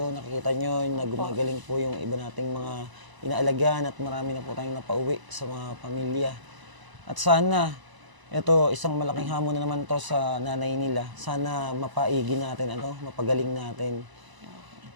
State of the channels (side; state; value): left; late; 1.0 ms